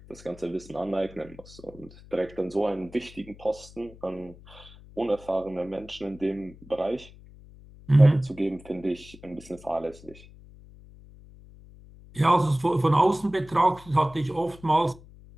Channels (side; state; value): left; noise; hum, 21 dB below the sound